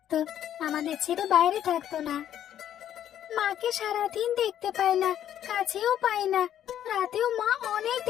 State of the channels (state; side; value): quieter; right; 10.7 dB